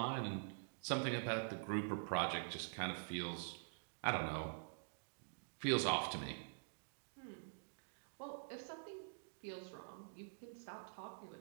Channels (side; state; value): left; silent; digital silence